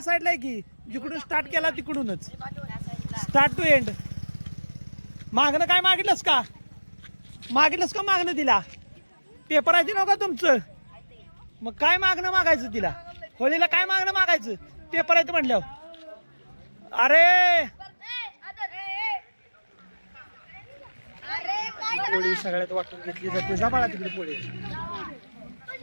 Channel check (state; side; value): inverted; both; correlation -1.00